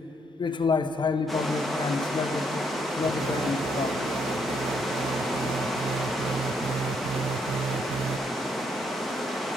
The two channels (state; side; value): normal; both; correlation 0.73